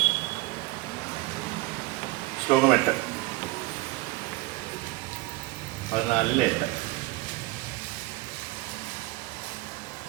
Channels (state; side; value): quieter; left; 20.4 dB